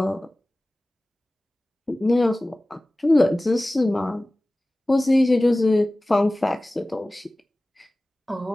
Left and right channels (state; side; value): normal; both; correlation 0.98